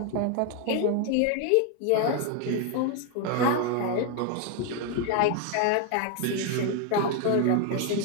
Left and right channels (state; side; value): different; both; correlation 0.01